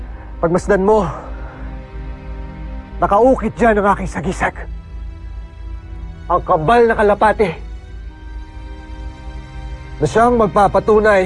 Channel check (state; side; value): identical; both; correlation 1.00